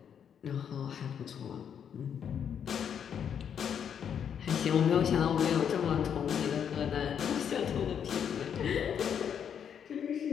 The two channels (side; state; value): right; quieter; 8.1 dB